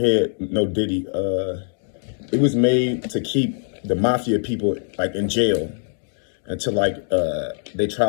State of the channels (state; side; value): silent; right; 64 dB below the other